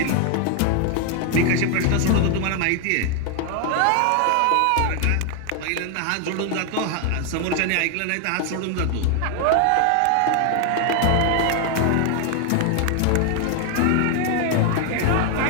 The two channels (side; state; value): both; different; correlation 0.00